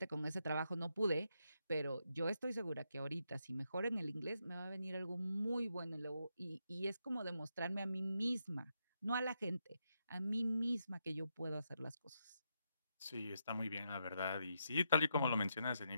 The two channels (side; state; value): both; inverted; correlation -0.82